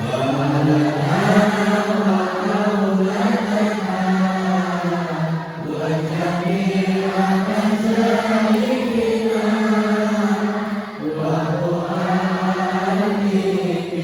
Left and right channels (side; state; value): both; identical; correlation 1.00